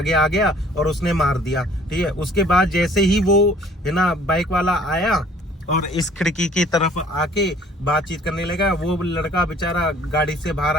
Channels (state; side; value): normal; both; correlation 0.55